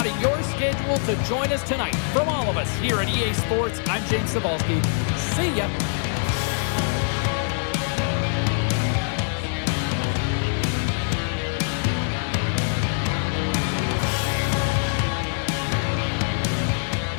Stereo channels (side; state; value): right; silent; digital silence